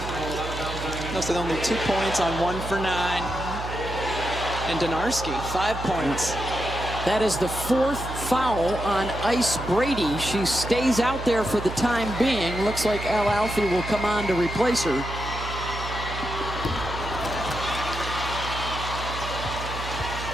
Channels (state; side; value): noise; right; hum, 8 dB below the sound